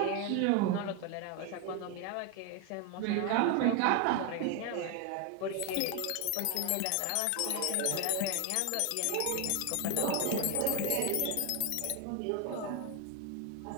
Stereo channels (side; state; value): both; different; correlation 0.01